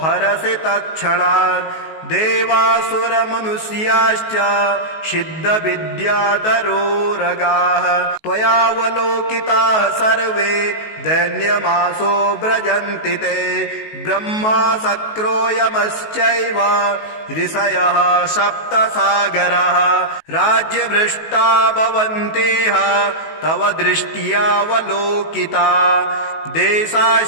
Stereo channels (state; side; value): late; right; 19 ms